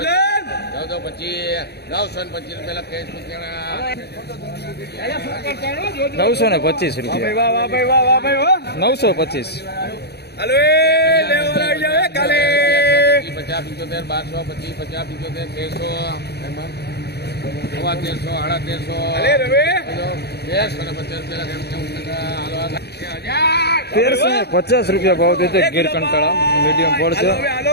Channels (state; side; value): late; right; 0.48 ms